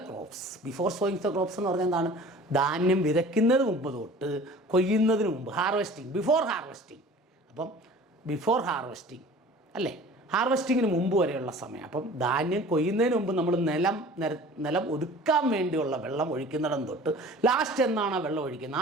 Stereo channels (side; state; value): both; normal; correlation 0.44